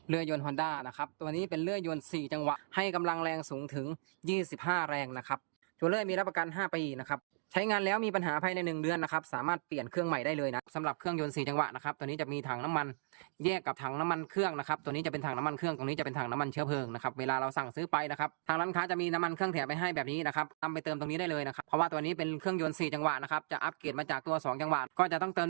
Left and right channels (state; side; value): silent; left; digital silence